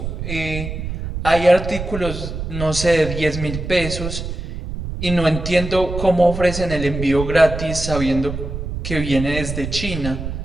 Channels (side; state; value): right; noise; rumble, 6 dB below the sound